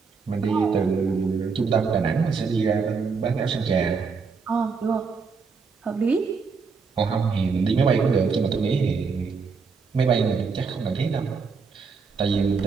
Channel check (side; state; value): left; quieter; 5.1 dB